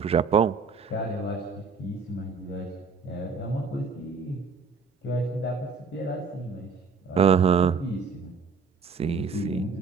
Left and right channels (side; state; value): left; quieter; 5.0 dB